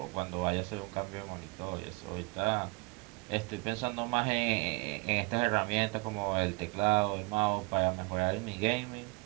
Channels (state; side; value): quieter; left; 26.9 dB